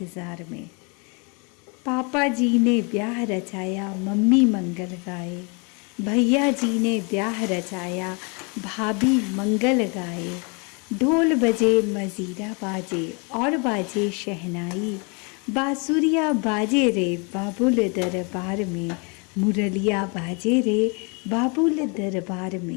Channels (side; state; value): right; quieter; 33.3 dB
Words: में। पापा जी ने ब्याह रचाया, मम्मी मंगल गाए। भैया जी ने ब्याह रचाया, भाभी मंगल गाए। ढोल बजे मजीरा बाजे और बाजे शहनाई। बांसुरिया बाजे रे बाबुल दरबार में, मुरलिया बाजे रे बाबुल दरबार